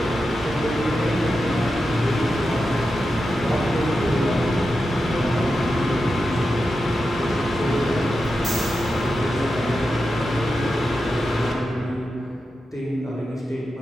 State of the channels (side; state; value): both; normal; correlation 0.90